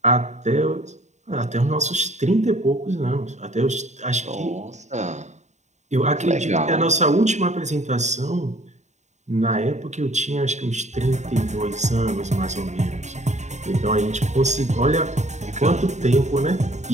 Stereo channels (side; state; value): left; late; 0.34 ms